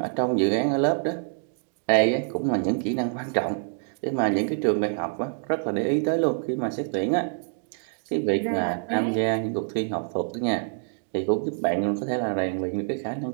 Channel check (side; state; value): left; silent; digital silence